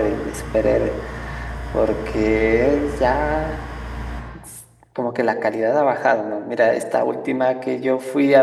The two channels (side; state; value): both; identical; correlation 1.00